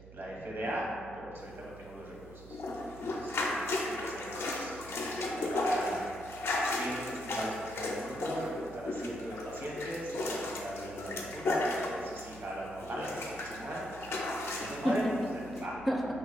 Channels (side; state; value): right; noise; hum, 17 dB below the sound